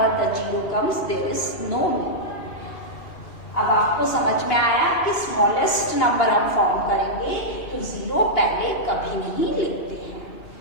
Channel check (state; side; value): late; right; 2.9 ms